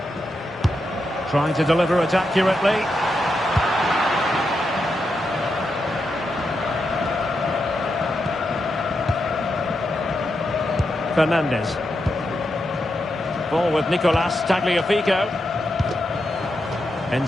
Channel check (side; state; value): both; normal; correlation 0.85